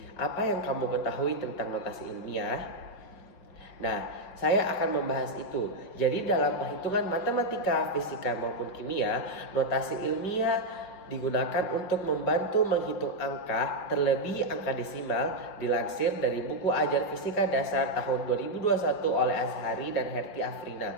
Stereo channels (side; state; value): right; late; 4.8 ms